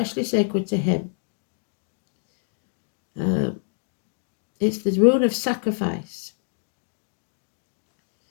sacred to him. It's the rune of sacrifice.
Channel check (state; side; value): silent; right; digital silence